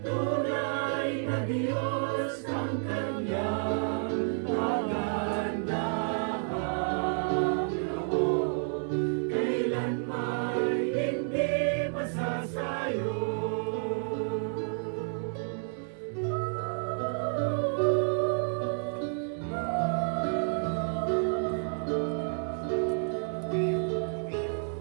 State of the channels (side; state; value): left; silent; 58 dB below the other